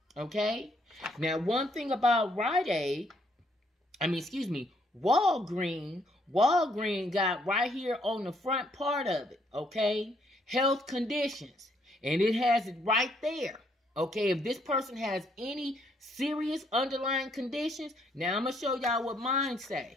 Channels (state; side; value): normal; both; correlation 0.70